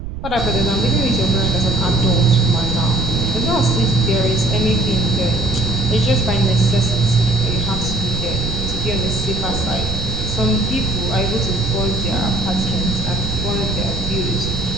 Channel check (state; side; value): noise; right; rumble, 8 dB below the sound